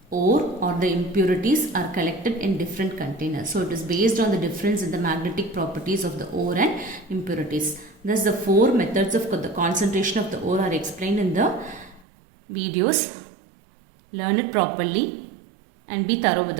ore or the impurities are collected in different containers. So it is based on the difference in the magnetic properties of the ore and impurities. Thus the four methods of the concentration of the ore are explained in the videos. Learn it properly and be thorough with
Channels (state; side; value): drops out; left; at 12.1 s